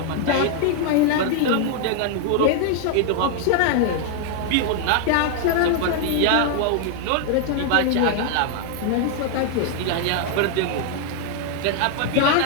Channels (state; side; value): different; both; correlation 0.00